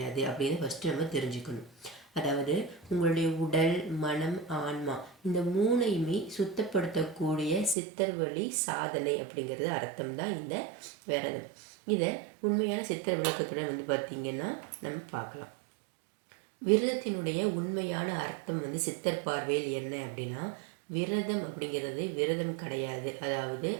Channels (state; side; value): drops out; left; at 7.8 s